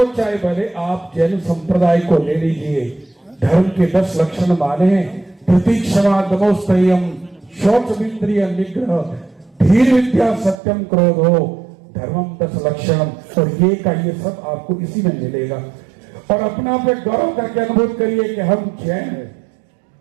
चाहे भले आप जैन संप्रदाय को ले लीजिए। धर्म के 10 लक्षण माने हैं, प्रतीक्षमा दमोस्तयम, शौच इंद्रिय निग्रह, धीर विद्या सत्यम क्रोधो, धर्मम 10 लक्षण। और ये का ये सब आपको इसी में मिलेगा। और अपना पे गौरव करके अनुभव करिए कि हम जैन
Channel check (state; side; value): drops out; left; at 10.6 s